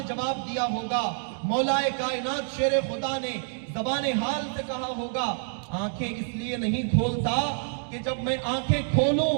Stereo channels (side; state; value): left; silent; digital silence